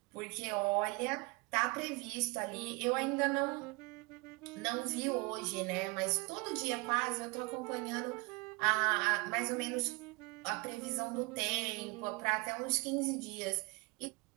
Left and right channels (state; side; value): quieter; left; 26.7 dB